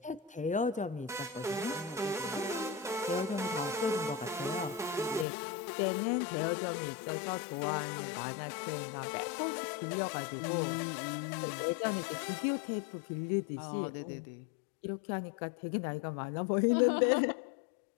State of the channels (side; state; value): right; drops out; at 5.2 s